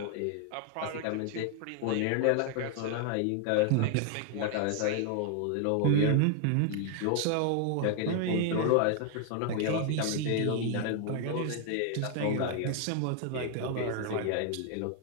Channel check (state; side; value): different; both; correlation 0.00